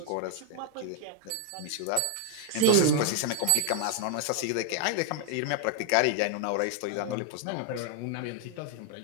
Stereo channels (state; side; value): different; both; correlation 0.00